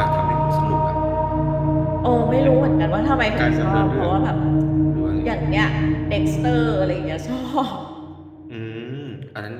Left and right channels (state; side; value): identical; both; correlation 1.00